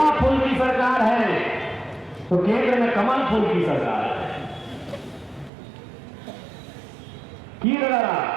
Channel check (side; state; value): left; drops out; at 5.5 s